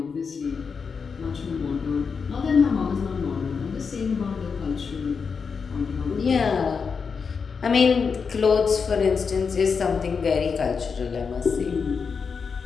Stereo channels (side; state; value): right; quieter; 5.6 dB